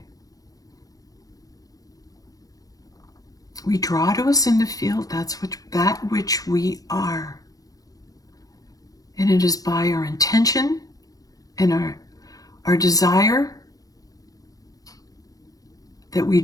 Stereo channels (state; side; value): late; right; 0.17 ms